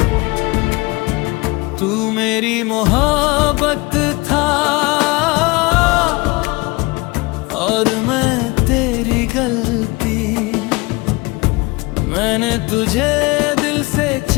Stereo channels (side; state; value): right; quieter; 24.4 dB